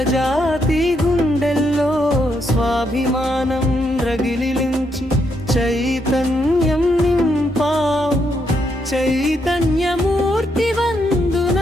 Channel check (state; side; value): normal; both; correlation 0.78